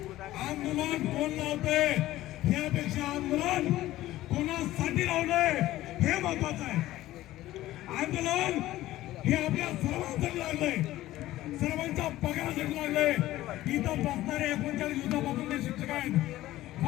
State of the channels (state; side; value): quieter; right; 15.5 dB